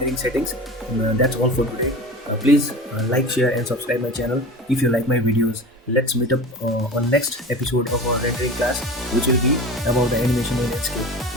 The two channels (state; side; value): normal; both; correlation 0.34